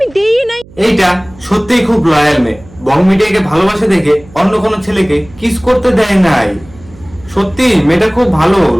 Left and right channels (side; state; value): right; noise; hum, 23 dB below the sound